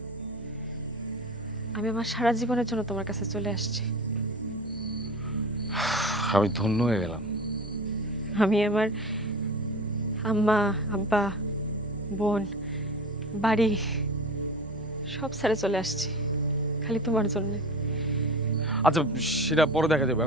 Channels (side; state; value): both; normal; correlation 0.34